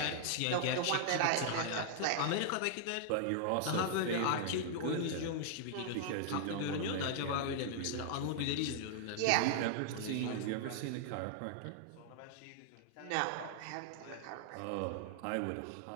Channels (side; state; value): both; different; correlation -0.01